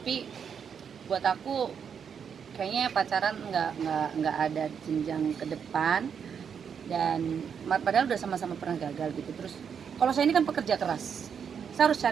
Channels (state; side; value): quieter; left; 7.2 dB